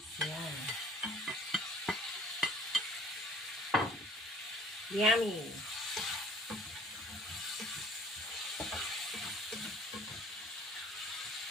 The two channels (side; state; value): both; normal; correlation 0.53